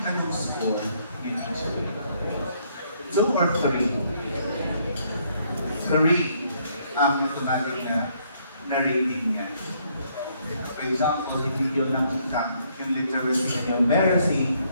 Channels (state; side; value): inverted; both; correlation -0.69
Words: ka nung score in teacher. 2 or 3? 3. Ang automatic na rating niya. For example, hindi yung nakita yung literacy and yung numeracy